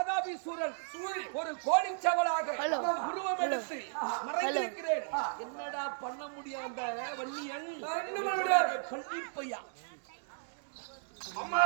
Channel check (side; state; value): left; silent; digital silence